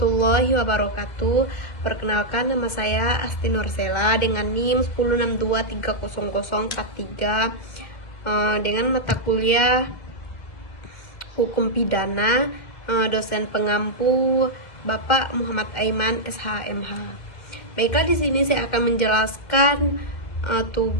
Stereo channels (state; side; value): late; right; 1.8 ms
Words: wabarakatuh. Perkenalkan, nama saya Asti Nursela dengan NIM 1062300043 dengan mata kuliah Hukum Pidana, dosen pengampu Bapak Muhammad Aiman SHMH. Baiklah, di sini saya akan menjelaskan